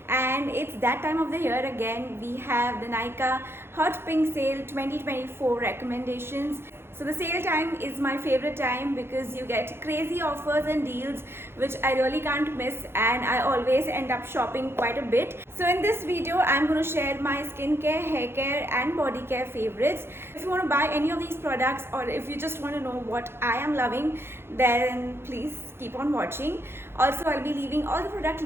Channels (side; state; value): left; late; 0.11 ms